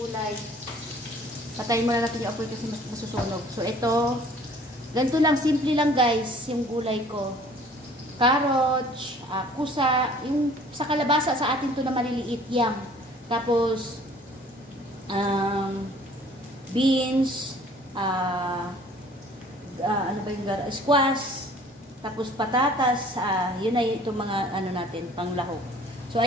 Patayin muna natin yung apoy kasi masusunog. So, ito, ganito lang, simple lang guys, yung gulay ko. Carrots, kusa, yung sa kalabasa sa atin to na maliliit yang. Tapos beans, ano ba yung squash, tapos patatas, yun na itong mga ano natin, panglahok. So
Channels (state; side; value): normal; both; correlation 0.53